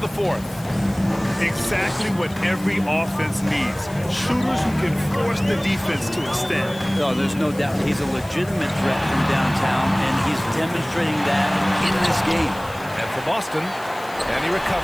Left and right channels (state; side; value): noise; left; hiss, 20 dB below the sound